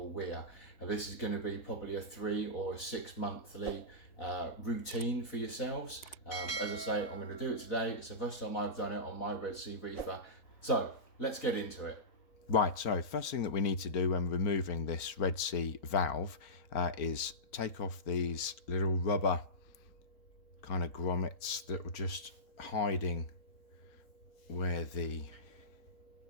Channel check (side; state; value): right; late; 4.0 ms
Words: weir. And this is going to be probably a 3 or 6 monthly routine for yourselves. As I say, I'm going to do it today. It's the first time I've done it on my Red Sea Reefer. So let's get into it. Right, so first thing that we need to do when removing this Red Sea valve is take off these little rubber kind of grommets that were just hiding where the